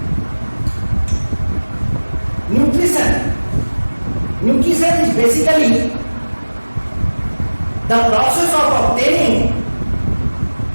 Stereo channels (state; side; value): inverted; both; correlation -1.00